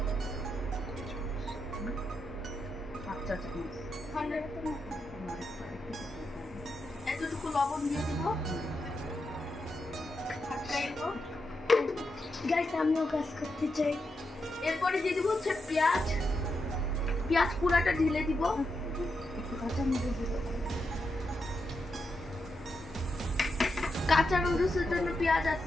এতটুকু লবণ দিয়ে দিব। গাইস আমিও কাজ করতে চাই। এরপরে দিয়ে দিব হচ্ছে পেঁয়াজ। পেঁয়াজ পুরাটা ঢেলে দিব। কাঁচা নুডলসের জন্য পেঁয়াজ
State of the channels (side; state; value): both; normal; correlation 0.85